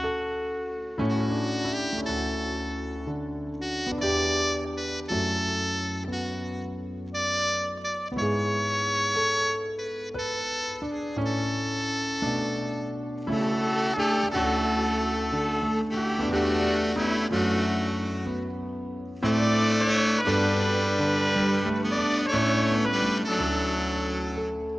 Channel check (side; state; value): both; normal; correlation 0.97